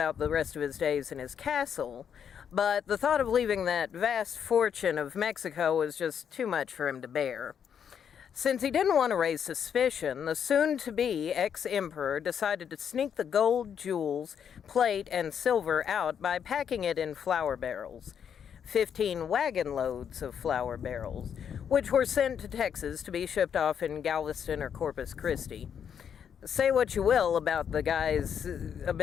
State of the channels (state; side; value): quieter; right; 8.0 dB